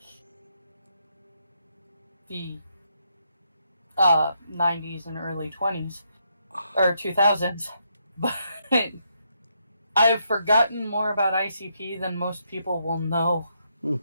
the 90s and early 20s. Or 2000s. But I've forgotten more about ICP than most people will know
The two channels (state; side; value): inverted; both; correlation -0.78